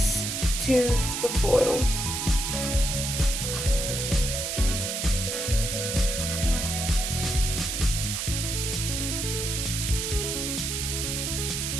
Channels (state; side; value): noise; right; hiss, 2 dB below the sound